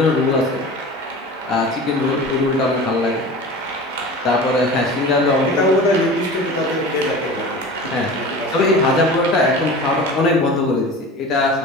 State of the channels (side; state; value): both; normal; correlation 0.36